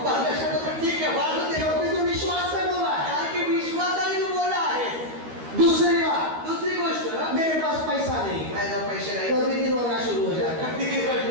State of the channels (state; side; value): late; left; 13 ms